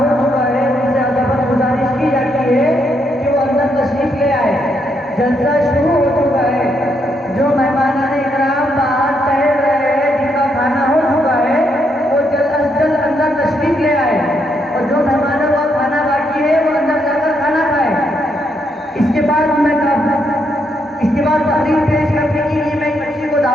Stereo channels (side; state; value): both; normal; correlation 0.77